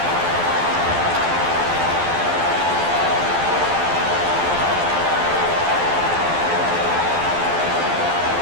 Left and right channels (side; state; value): left; late; 12 ms